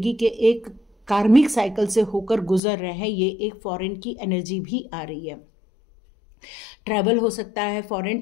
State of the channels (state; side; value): drops out; right; at 2.6 s